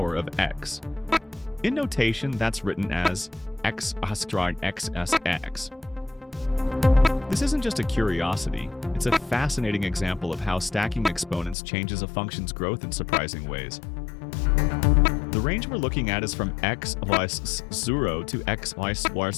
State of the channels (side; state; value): right; drops out; at 11.6 s